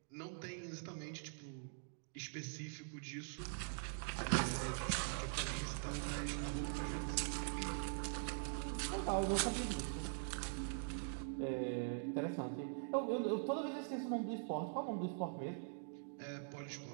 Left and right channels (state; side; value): silent; left; digital silence